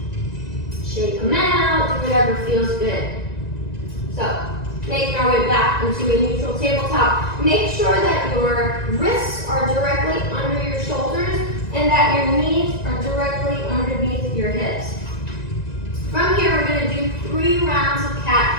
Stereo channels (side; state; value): right; late; 2.0 ms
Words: Shake them out, do whatever feels good. So, making our way back into a neutral tabletop. Make sure that your wrists are directly under your shoulders and that your knees are directly underneath your hips. From here, we're going to do 3 rounds of